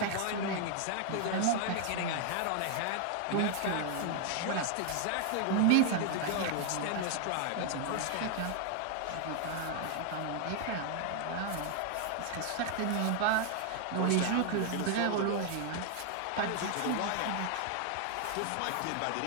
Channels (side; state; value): both; different; correlation 0.00